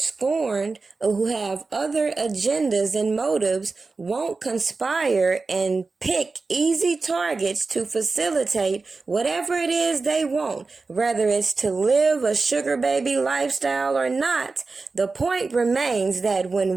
or who have other agendas and motives won't conspire and pick easy targets to facilitate whatever it is they want, whether it's to live a sugar baby lifestyle or not, the point remains that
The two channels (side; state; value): left; quieter; 4.0 dB